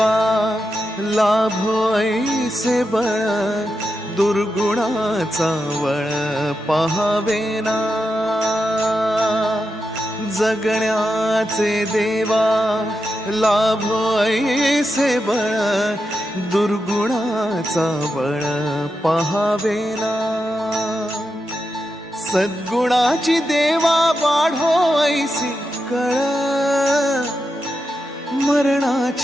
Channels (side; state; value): both; normal; correlation 0.88